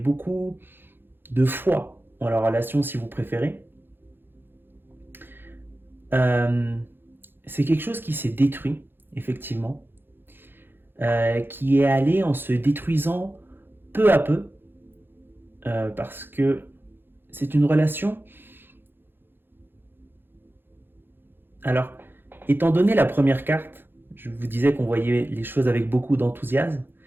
de foi en la relation, si vous préférez. C'est quelque chose qui s'est détruit, effectivement, qui est allé en se détruisant peu à peu, parce que c'est une relation. Alors, étant donné la première carte, je vous disais qu'on voyait les choses avec beaucoup d'enthousiasme,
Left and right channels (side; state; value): left; late; 0.10 ms